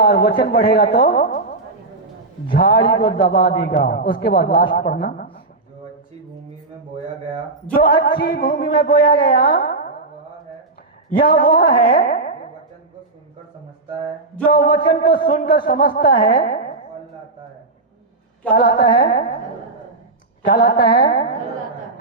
और वचन बढ़ेगा तो झाड़ी को दबा देगा। उसके बाद लास्ट पढ़ना, जो अच्छी भूमि में बोया गया, जो अच्छी भूमि में बोया गया यह वह है जो वचन को सुनकर समझता है, जो वचन को सुनकर समझता है। फल लाता है। क्या लाता है? क्या लाता है?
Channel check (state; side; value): quieter; left; 3.3 dB